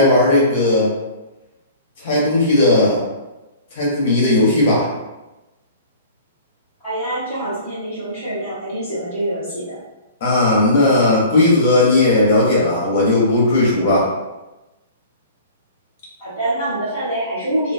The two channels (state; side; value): inverted; both; correlation -0.45